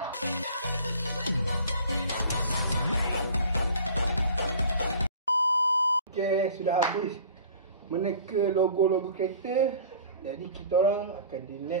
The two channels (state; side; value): inverted; both; correlation -0.45